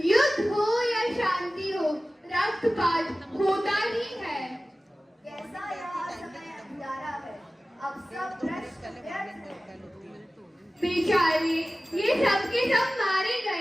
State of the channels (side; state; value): both; normal; correlation 0.97